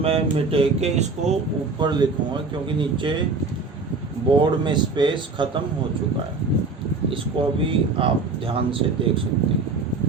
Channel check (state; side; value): quieter; left; 4.0 dB